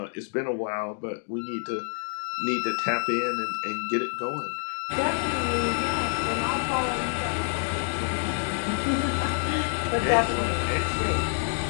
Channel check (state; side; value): silent; right; digital silence